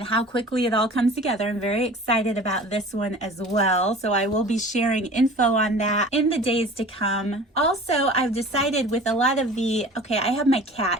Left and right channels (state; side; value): normal; both; correlation 0.42